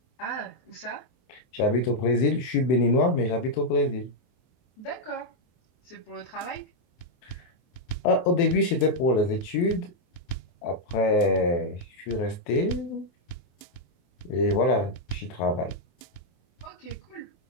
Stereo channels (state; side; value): late; right; 24 ms